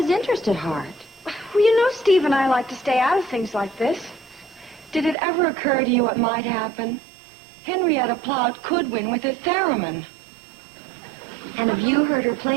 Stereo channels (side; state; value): left; drops out; at 5.2 s